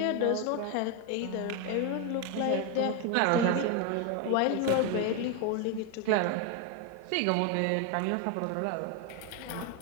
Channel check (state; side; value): different; both; correlation 0.02